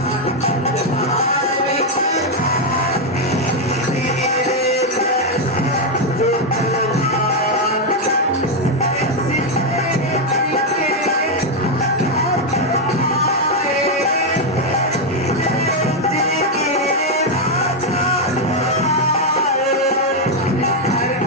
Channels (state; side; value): normal; both; correlation 0.03